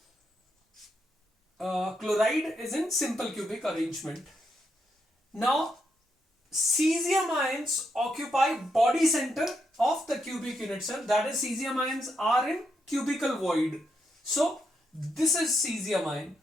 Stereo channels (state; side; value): normal; both; correlation 0.80